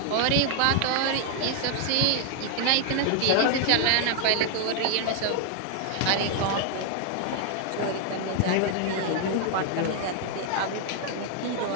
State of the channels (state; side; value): different; both; correlation 0.00